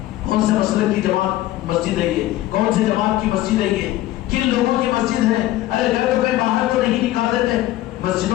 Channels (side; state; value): right; quieter; 15.3 dB